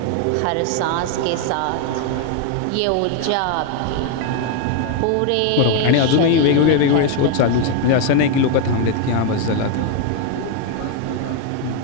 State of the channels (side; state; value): both; different; correlation 0.01